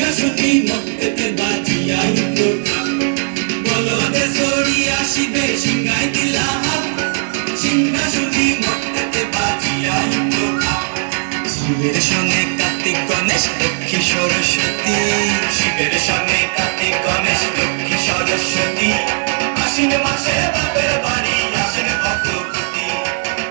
মর্তেতে বাজিয়া উঠল ঢাক। বলদে সরিয়া শিবে সিংহাই দিলা হাত, সিংহাসনী মর্তেতে বাজিয়া উঠল ঢাক। শিবের সঙ্গে কার্তিক গণেশ লক্ষ্মী সরস্বতী, শিবের সঙ্গে কার্তিক গণেশ লক্ষ্মী সরস্বতী। আশ্বিন মাসে বাপের বাড়ি আসেন ভগবতী,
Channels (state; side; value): silent; left; 68 dB below the other